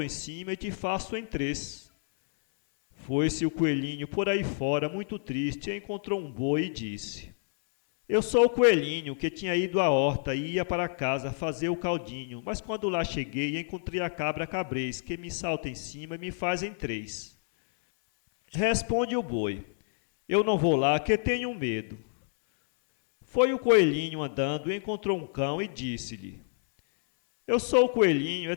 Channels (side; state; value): right; silent; 59 dB below the other